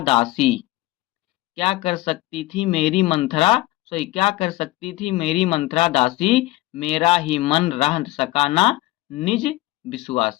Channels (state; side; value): quieter; right; 18.1 dB